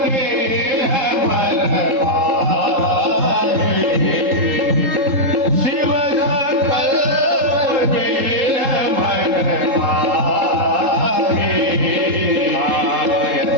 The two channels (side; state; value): left; late; 3.7 ms